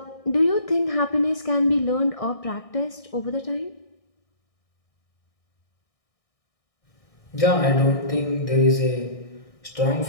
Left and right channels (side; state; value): right; late; 1.6 ms